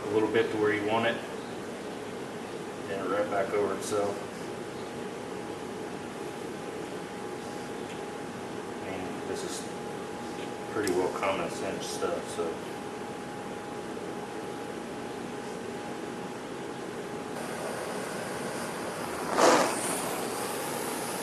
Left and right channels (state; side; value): identical; both; correlation 1.00